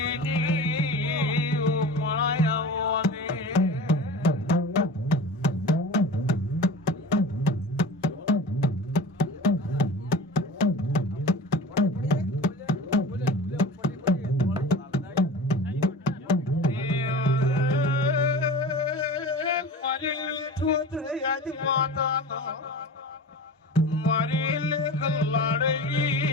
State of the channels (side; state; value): both; normal; correlation 0.35